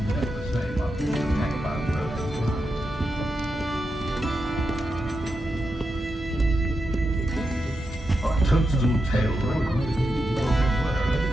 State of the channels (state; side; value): normal; both; correlation 0.87